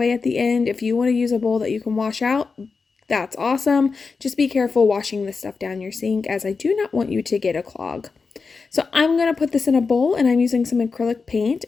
at the end. If you want to use a bowl that you can wash out, that's awesome. Just be careful washing this stuff down your sink, as I do not want you to get a clog. So I'm going to put this in a bowl, and I'm using some acrylic paint,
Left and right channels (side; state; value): right; quieter; 4.7 dB